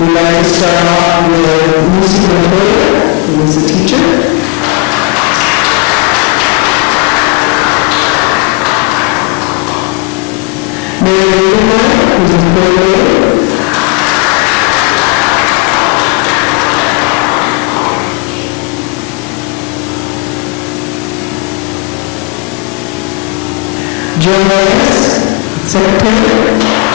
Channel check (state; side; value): quieter; right; 28.6 dB